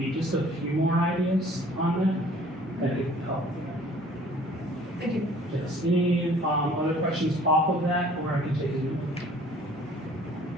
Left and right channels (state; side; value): normal; both; correlation 0.52